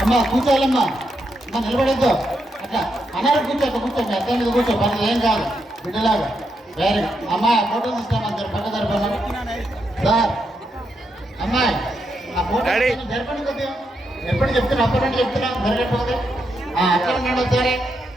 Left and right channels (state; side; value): normal; both; correlation 0.82